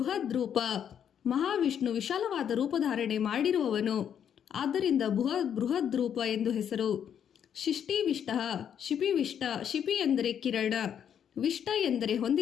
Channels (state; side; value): quieter; right; 8.7 dB